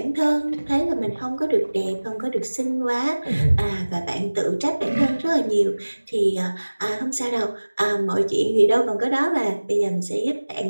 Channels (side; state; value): both; inverted; correlation -1.00